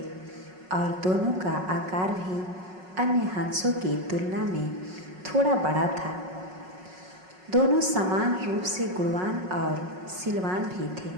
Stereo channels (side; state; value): left; late; 5.4 ms